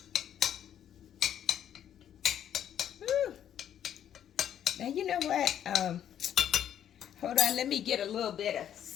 Woo. Now you know what? Hold on, let me get a little bit of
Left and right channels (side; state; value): right; quieter; 10.0 dB